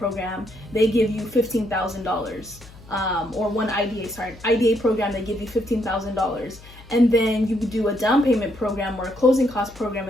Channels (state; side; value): noise; left; hum, 21 dB below the sound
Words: they give you $15,000, or one IDA program, they give you $15,000. And then you do a down payment program or a closing cost program